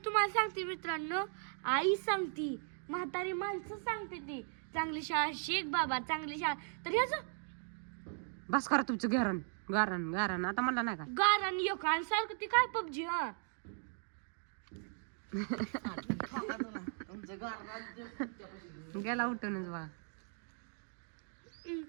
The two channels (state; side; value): silent; left; 53 dB below the other